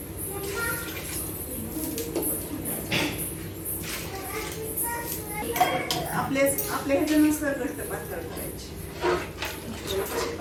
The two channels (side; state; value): both; identical; correlation 1.00